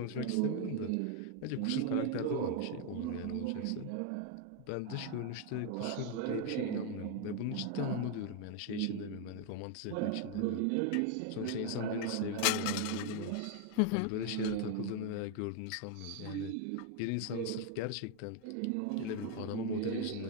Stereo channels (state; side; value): different; both; correlation 0.01